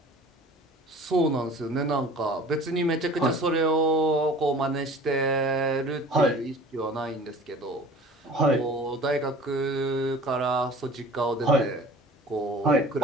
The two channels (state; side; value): normal; both; correlation 0.45